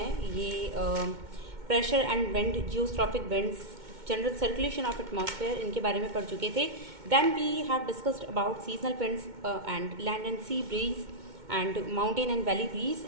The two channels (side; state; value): left; late; 2.2 ms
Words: ये pressure and wind, geostrophic winds, general circulation of atmosphere, इनके बारे में पढ़ चुके थे। Then we have discussed about seasonal winds and land and sea breeze and mountain and valley breeze